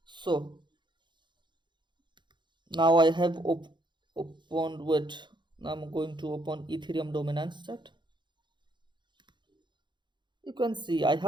So now I have opened with, now I'm going to open Ethereum dominance chart. You can see I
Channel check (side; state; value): left; late; 0.22 ms